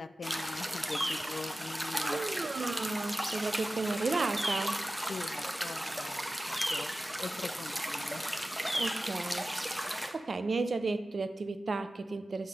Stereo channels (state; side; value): normal; both; correlation 0.95